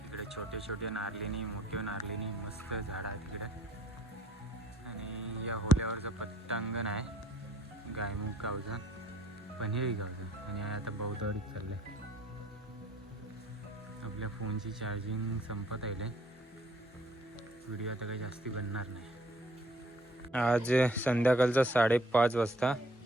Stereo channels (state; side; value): normal; both; correlation 0.60